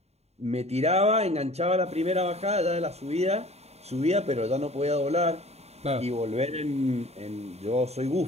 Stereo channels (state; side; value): late; left; 0.31 ms